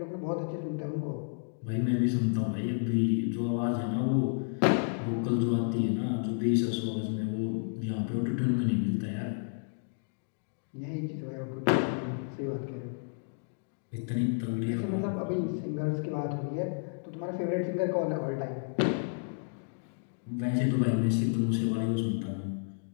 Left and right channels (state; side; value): silent; right; digital silence